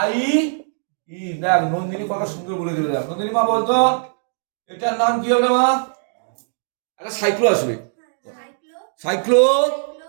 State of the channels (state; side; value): silent; left; digital silence